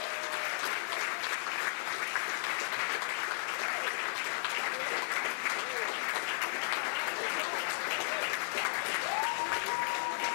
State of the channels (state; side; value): silent; right; digital silence